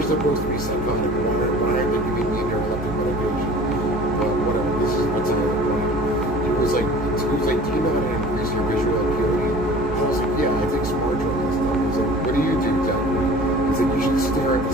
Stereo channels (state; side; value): normal; both; correlation 0.44